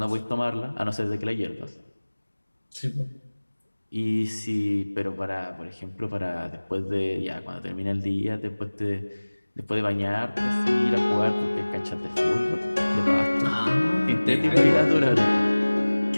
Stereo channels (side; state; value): both; inverted; correlation -1.00